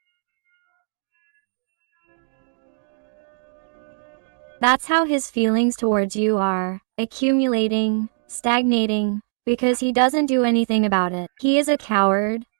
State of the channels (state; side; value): silent; left; digital silence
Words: That's how his feelings towards you are, accumulating, stagnating, because he doesn't do anything about it. He is a coward,